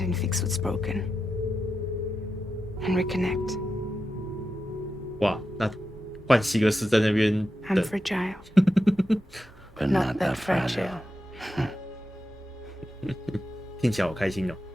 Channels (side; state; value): both; normal; correlation 0.89